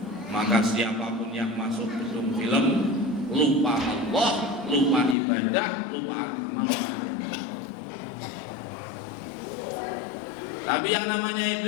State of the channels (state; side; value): drops out; right; at 5.2 s